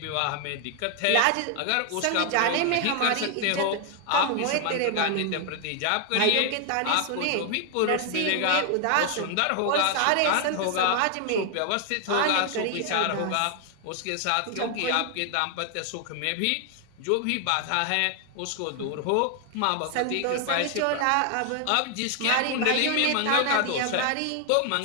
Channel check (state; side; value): different; both; correlation 0.00